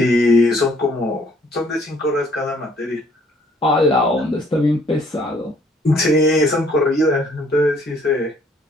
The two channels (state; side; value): normal; both; correlation 0.62